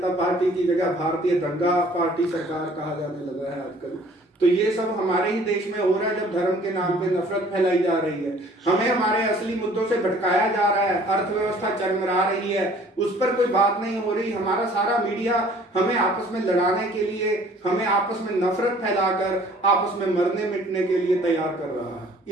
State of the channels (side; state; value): both; normal; correlation 0.54